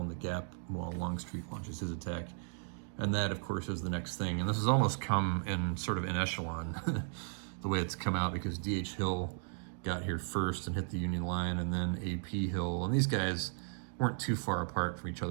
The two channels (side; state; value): left; silent; digital silence